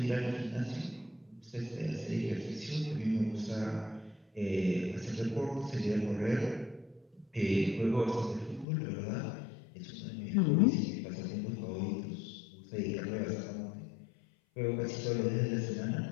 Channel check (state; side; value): drops out; right; at 8.7 s